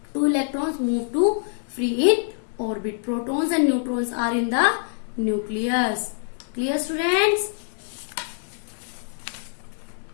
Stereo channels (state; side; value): silent; right; 60 dB below the other